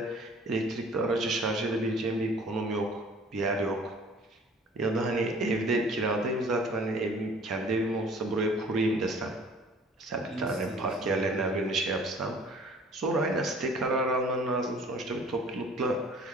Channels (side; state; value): both; normal; correlation 0.51